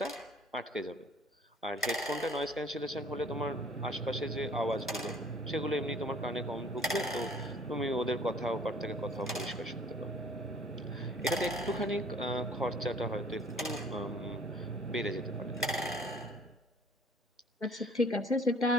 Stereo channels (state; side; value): normal; both; correlation 0.54